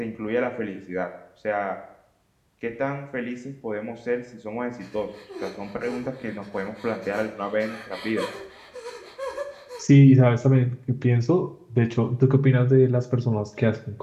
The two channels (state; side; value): identical; both; correlation 1.00